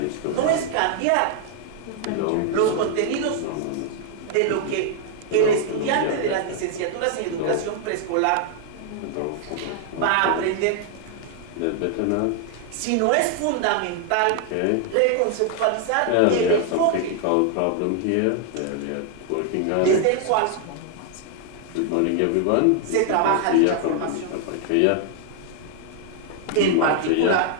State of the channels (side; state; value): both; different; correlation 0.00